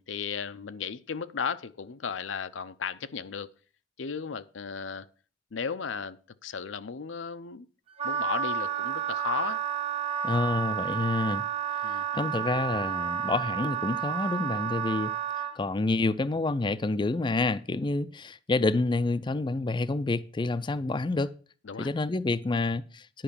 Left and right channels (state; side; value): normal; both; correlation 0.45